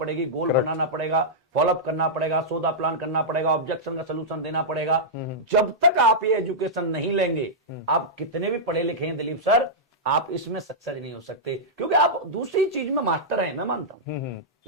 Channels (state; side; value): normal; both; correlation -0.10